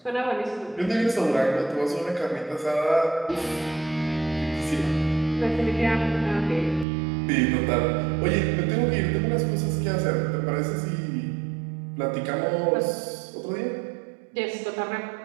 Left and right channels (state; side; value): drops out; left; at 6.9 s